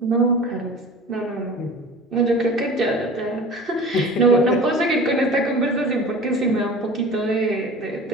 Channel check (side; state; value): both; normal; correlation 0.39